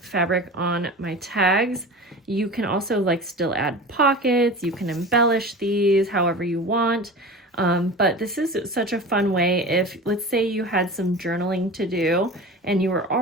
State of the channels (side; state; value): both; normal; correlation 0.33